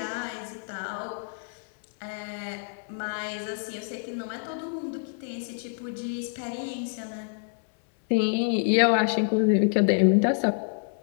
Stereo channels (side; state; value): right; silent; 60 dB below the other